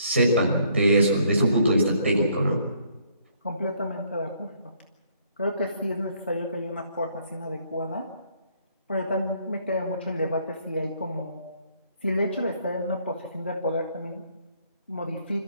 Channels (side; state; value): both; inverted; correlation -0.66